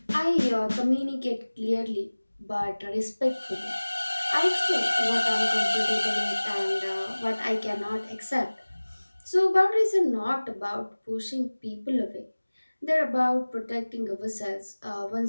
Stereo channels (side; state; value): both; inverted; correlation -1.00